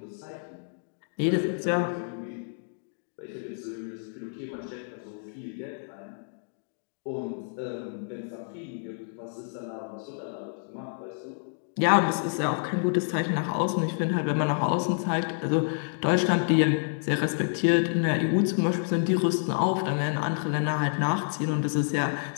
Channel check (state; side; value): silent; right; digital silence